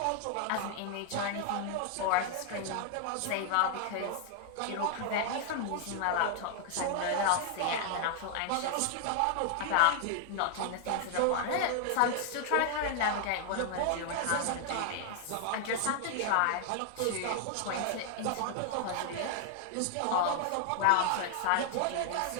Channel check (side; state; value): both; different; correlation 0.00